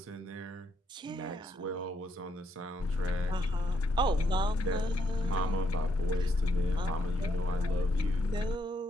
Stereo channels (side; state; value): both; normal; correlation 0.76